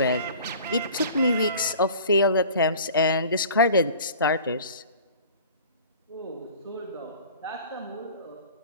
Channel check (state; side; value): inverted; both; correlation -0.44